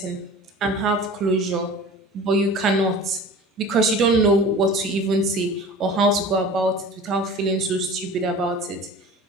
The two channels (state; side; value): normal; both; correlation 0.39